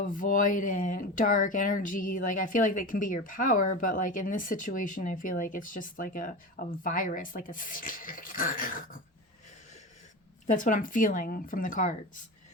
dark energy. Like I feel like that can be your power, but like in this situation, I feel like it's just like a virus, like a that's what I'm feeling from the cards.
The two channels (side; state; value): both; normal; correlation 0.27